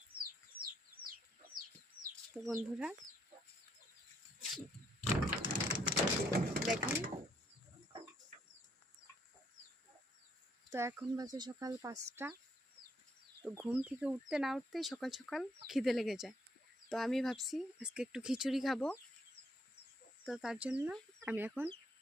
তো বন্ধুরা দেখেন, তো এখন বাজে সকাল 5টা। তো ঘুম থেকে উঠতে না উঠতেই সকাল সকাল খিদে লেগে যায়। তো আমি ভাবছি আজকে একটু খিচুড়ি খাবো। তো তার জন্য আমি এখন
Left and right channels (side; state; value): both; normal; correlation 0.71